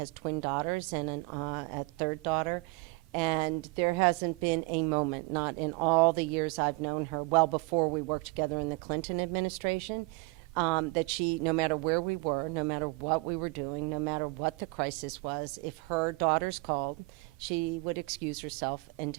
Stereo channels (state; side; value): quieter; left; 27.0 dB